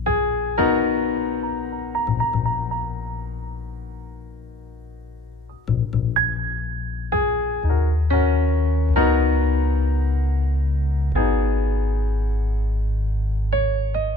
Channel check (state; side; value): normal; both; correlation 0.58